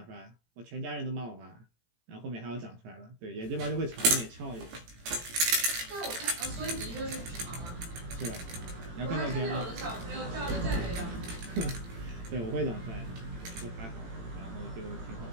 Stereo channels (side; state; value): left; late; 18 ms